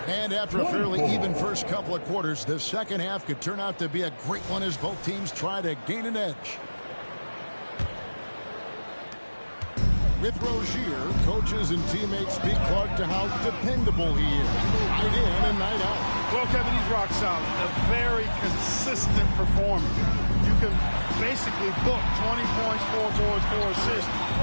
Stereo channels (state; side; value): inverted; both; correlation -1.00